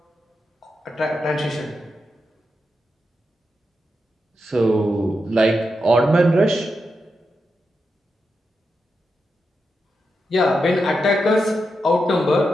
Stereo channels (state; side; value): normal; both; correlation 0.87